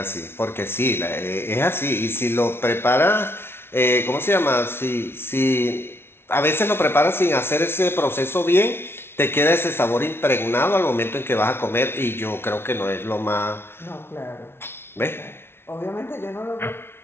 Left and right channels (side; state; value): right; late; 0.12 ms